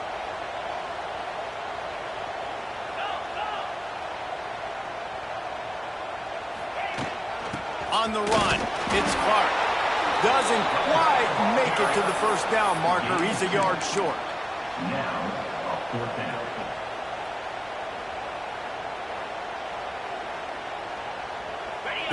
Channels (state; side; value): identical; both; correlation 1.00